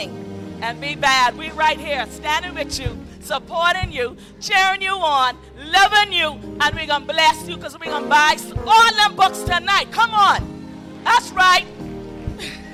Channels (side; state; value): both; identical; correlation 1.00